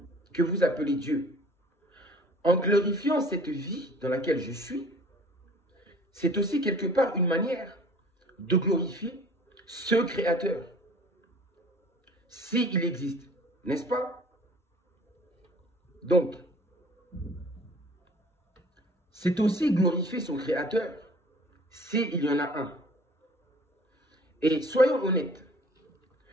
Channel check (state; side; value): normal; both; correlation 0.49